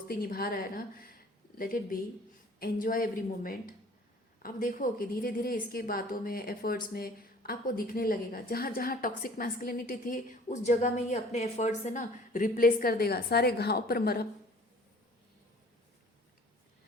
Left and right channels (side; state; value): both; normal; correlation 0.50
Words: निभा रहा है ना, let it be, enjoy every moment. आप देखो कि धीरे धीरे इसकी बातों में, एफर्ट्स में आपको दिखने लगेगा, जहाँ जहाँ टॉक्सिक मैस्कुलिनिटी थी उस जगह में ये अपने एफर्ट्स से ना रिप्लेस कर देगा, सारे घाव पर मरहम,